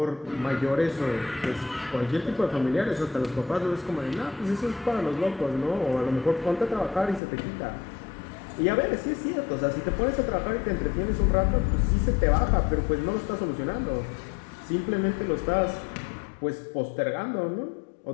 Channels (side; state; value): right; drops out; at 7.2 s